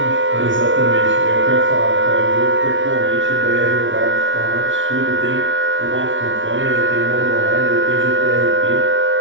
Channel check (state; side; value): late; left; 0.56 ms